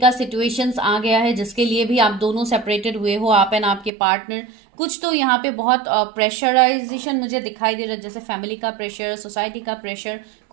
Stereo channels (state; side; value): drops out; left; at 3.9 s